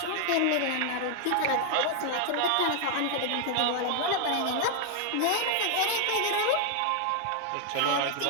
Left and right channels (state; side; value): different; both; correlation 0.00